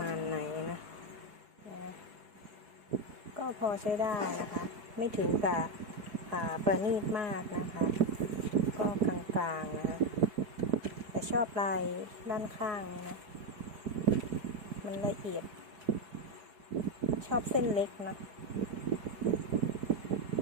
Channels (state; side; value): late; left; 4.7 ms